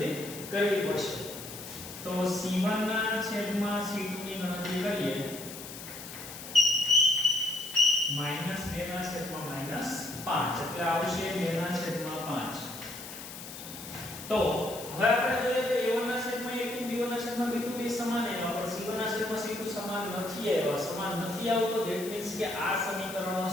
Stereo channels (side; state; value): left; noise; hiss, 12 dB below the sound